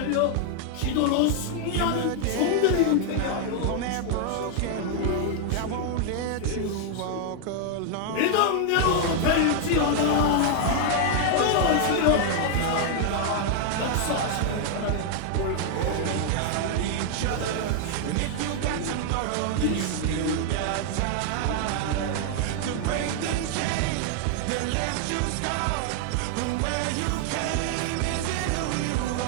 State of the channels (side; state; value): both; different; correlation 0.00